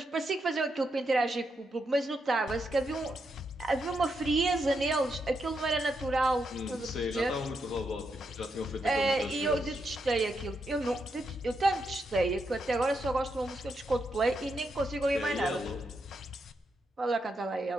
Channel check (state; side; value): normal; both; correlation 0.82